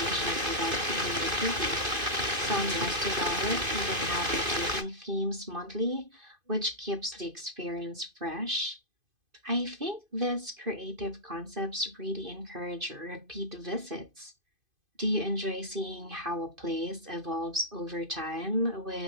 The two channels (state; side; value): late; left; 2.5 ms